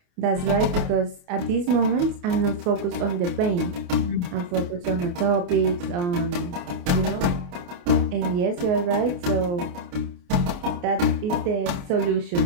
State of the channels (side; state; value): left; late; 28 ms